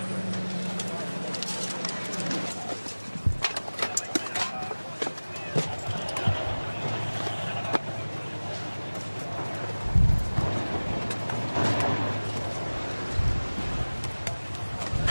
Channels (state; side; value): inverted; both; correlation -1.00